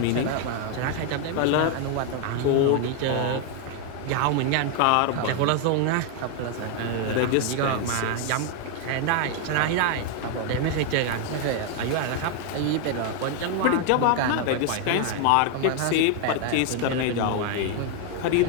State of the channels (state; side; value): different; both; correlation 0.00